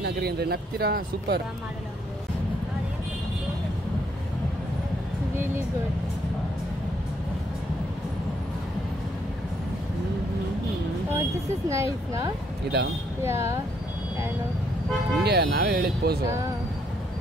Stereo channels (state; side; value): normal; both; correlation 0.71